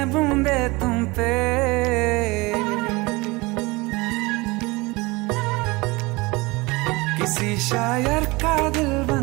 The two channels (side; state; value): left; quieter; 23.7 dB